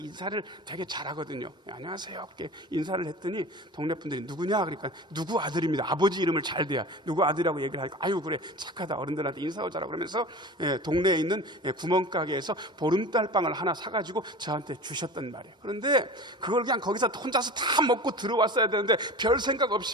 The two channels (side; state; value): both; normal; correlation 0.35